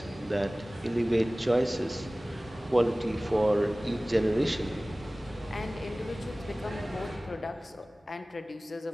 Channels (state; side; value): normal; both; correlation 0.98